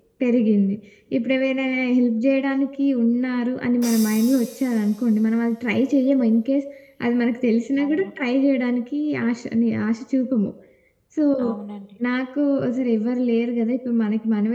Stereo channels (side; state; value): both; identical; correlation 1.00